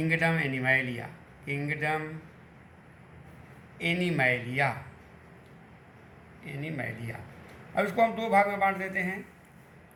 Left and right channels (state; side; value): identical; both; correlation 1.00